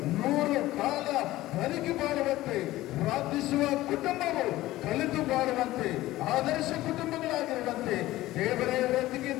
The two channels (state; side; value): quieter; right; 16.6 dB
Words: 100 ಕಾಲ ಬದುಕಿ ಬಾಳುವಂತೆ, ಪ್ರಾರ್ಥಿಸುವ ಕುಟುಂಬವು ಕಲಿತು ಬಾಳುವಂತೆ, ಆದರ್ಶ ಕುಟುಂಬಗಳಾಗಿರುವಂತೆ ದೇವರೇ